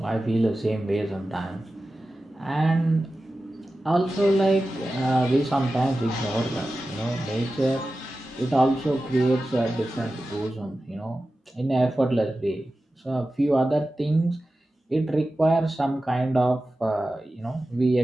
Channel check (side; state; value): both; normal; correlation 0.94